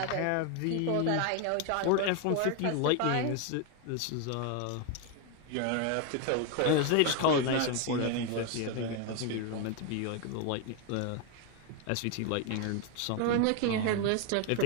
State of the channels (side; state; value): both; different; correlation 0.01